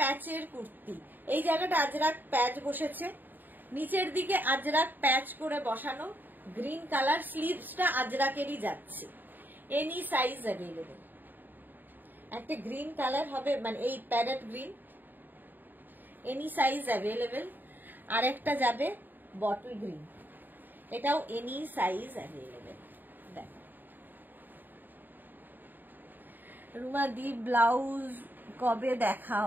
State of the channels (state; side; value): late; left; 0.090 ms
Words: কুর্তি, এই জায়গাটা আজরাক প্যাচ বসেছে, নিচের দিকে আজরাক প্যাচ করে বসানো, গ্রিন কালার। স্লিভসটা আজরাকেরই যাচ্ছে, এনি সাইজ অ্যাভেলেবেল। একটা গ্রিন কালার হবে, মানে এই parrot green, any size available. আর একটা যাবে বটল গ্রিন, এটাও এনি সাইজ অ্যাভেলেবেল। দেখো রুমা দি ব্লাউজ কবে